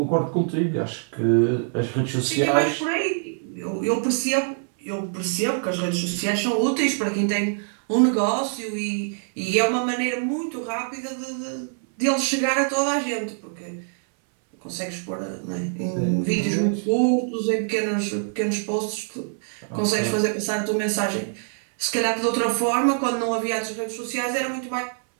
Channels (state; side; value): silent; left; 61 dB below the other